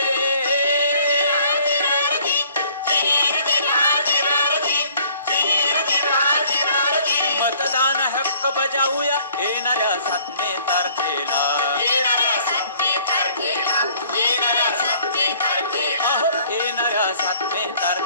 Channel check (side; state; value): both; inverted; correlation -0.57